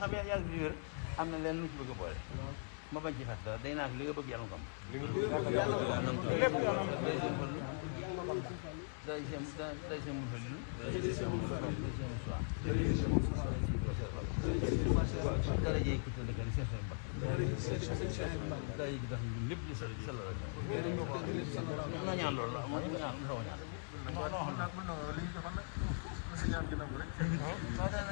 xam yàgg bi wér am na leen lu ci bëgg a boole ma bañ ci fàtt dara day naa li nga bëgg yàlla nga am lépp day seen fallu day seen mun fallu day seen mun soir dara jëye ku tëdd ni seen mbakk dara jëye ki tax ñu lépp ñu sell la noo ñaan loolu la moo ñaan xaw ñaan li ñu joxoon nag na sa ñaan gi nangu rek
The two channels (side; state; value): right; silent; digital silence